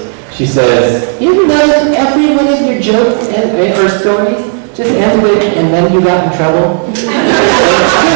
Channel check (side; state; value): left; silent; 58 dB below the other